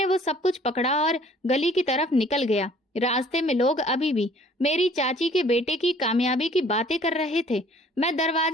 वो सब कुछ पकड़ा और गली की तरफ निकल गया। रास्ते में लोग अभी भी मेरी चाची के बेटे की कामयाबी की बातें कर रहे थे। मैं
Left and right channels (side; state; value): both; normal; correlation 0.55